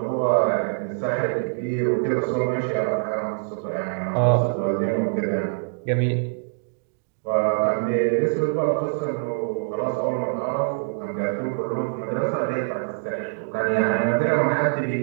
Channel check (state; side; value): silent; left; digital silence